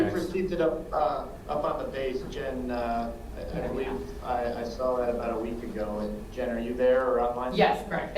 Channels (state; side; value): identical; both; correlation 1.00